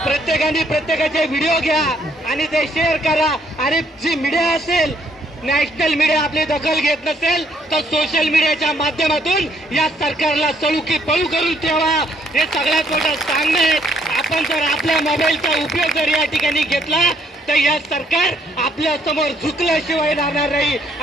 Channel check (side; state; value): both; normal; correlation 0.67